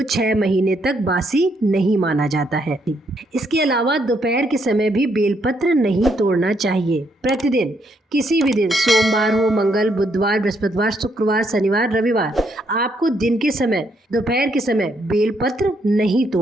6 महीने तक बासी नहीं माना जाता है। इसके अलावा दोपहर के समय भी बेलपत्र नहीं तोड़ना चाहिए। प्रतिदिन किसी भी दिन, सोमवार हो, मंगल, बुधवार, बृहस्पतिवार, शुक्रवार, शनिवार, रविवार, आपको दिन के समय, दोपहर के समय बेलपत्र नहीं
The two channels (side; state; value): both; normal; correlation 0.74